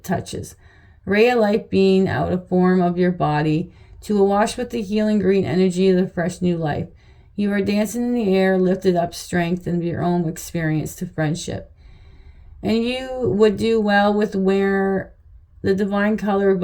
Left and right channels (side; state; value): both; identical; correlation 1.00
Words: touches. Ray of life being out of form of your body to awash with the healing green energy of the fresh new life. You are dancing in the air, lifted up strength and your own experience to friendship. And you would do well with wear the divine color